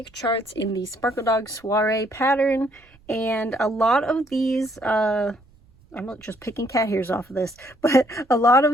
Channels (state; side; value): noise; right; rumble, 29 dB below the sound